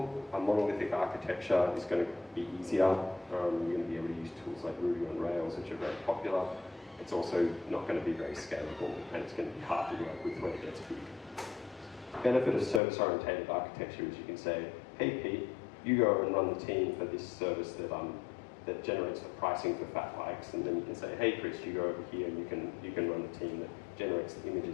a monolithic architecture is going to be easier. You're going to be able to use tools like Ruby on Rails, which are very popular. It's also not going to be very scalable, and it's going to be hard to work with when it gets big. The benefit of service-oriented architecture is you can say, hey Pete, you go and run the team for this service that generates the pricing for fat bikes, and then you can say, hey Chris, you go over here and you can run the team that generates the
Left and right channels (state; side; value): drops out; right; at 12.8 s